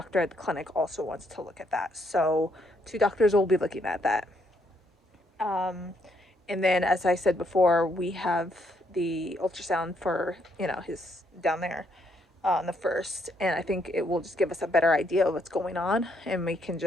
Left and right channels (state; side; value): normal; both; correlation 0.73